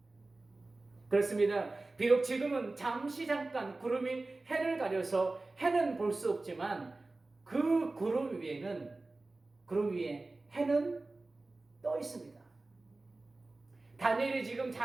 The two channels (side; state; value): left; quieter; 3.2 dB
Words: 그렇습니다. 비록 지금은 잠깐 구름이 해를 가려서 해는 볼 수 없지만 그 구름 위에 해는 떠 있습니다. 다니엘이 지금